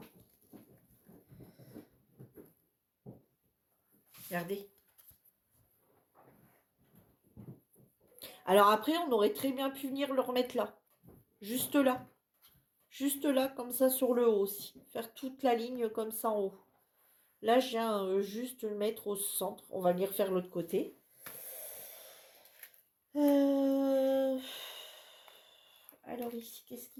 Regardez. Alors après, on aurait très bien pu venir le remettre là. Juste là. Juste là, comme ça, sur le haut aussi. Faire toute la ligne comme ça en haut. Là, je viens juste le mettre au centre. On va venir faire l'autre côté. Alors ici, qu'est-ce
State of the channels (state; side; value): identical; both; correlation 1.00